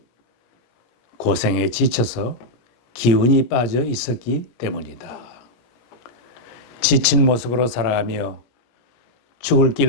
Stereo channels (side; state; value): right; late; 17 ms